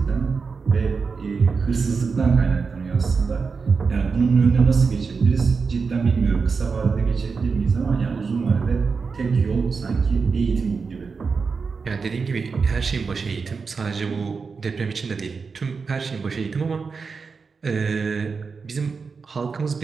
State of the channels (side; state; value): left; quieter; 5.0 dB